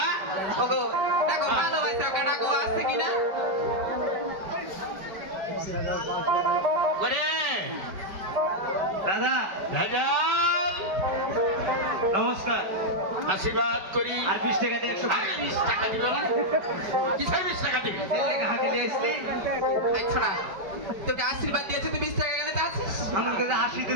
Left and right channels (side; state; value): left; late; 5.1 ms